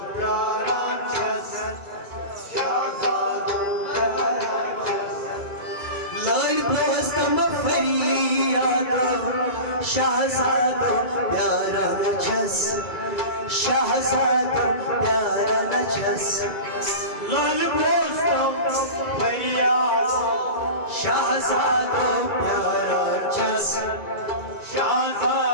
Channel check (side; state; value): right; late; 2.3 ms